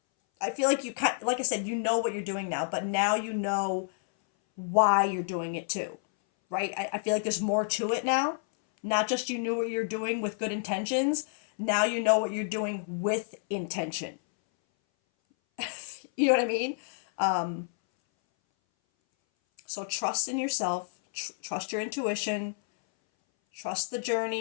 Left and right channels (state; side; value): silent; right; 58 dB below the other